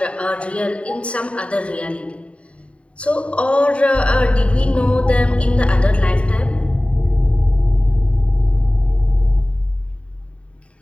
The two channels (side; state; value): right; late; 0.062 ms